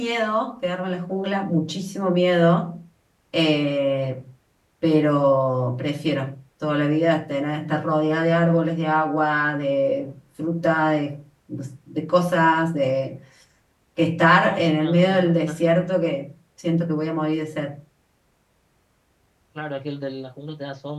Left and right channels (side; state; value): both; identical; correlation 1.00